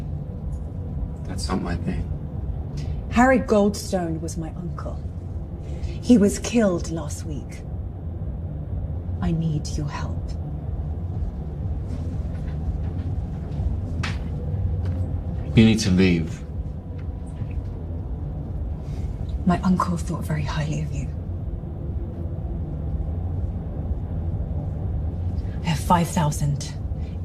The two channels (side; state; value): both; identical; correlation 1.00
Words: That's not my thing. Harry Goldstone was my uncle. He was killed last week. I need your help. You need to leave. My uncle thought very highly of you. I have 5,000